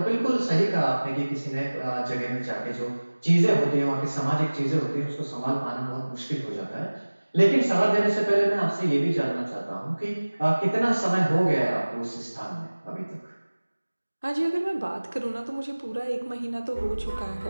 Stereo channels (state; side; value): inverted; both; correlation -1.00